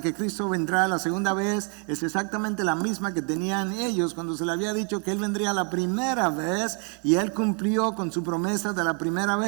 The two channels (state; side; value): quieter; left; 38.4 dB